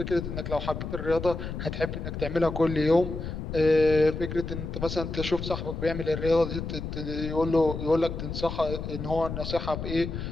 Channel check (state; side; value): noise; left; rumble, 6 dB below the sound